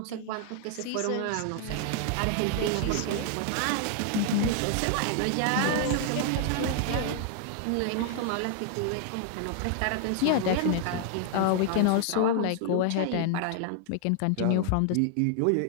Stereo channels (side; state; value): both; different; correlation 0.00